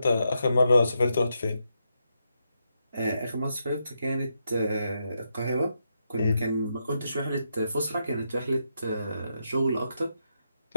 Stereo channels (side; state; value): both; inverted; correlation -0.83